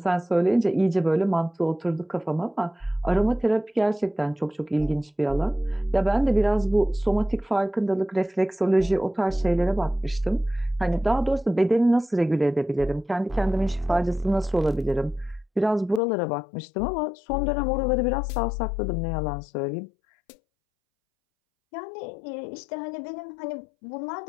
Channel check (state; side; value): drops out; right; at 16.0 s